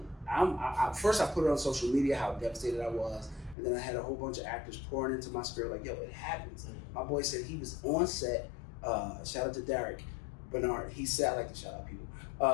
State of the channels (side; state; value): right; drops out; at 3.6 s